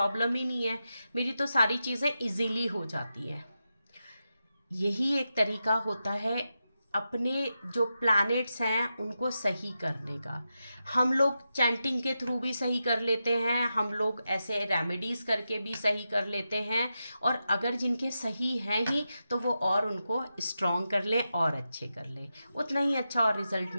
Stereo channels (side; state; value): both; inverted; correlation -0.89